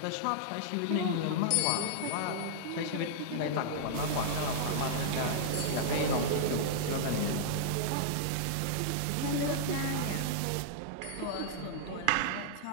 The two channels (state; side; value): different; both; correlation -0.02